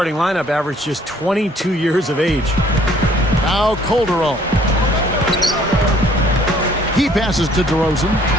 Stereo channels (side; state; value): both; normal; correlation 0.60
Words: lineup averaged just 22 years of age. Now Calderon. He passes to DeRozan.